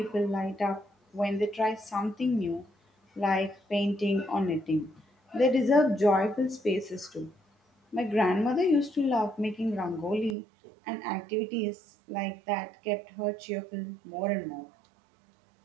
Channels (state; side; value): drops out; left; at 10.4 s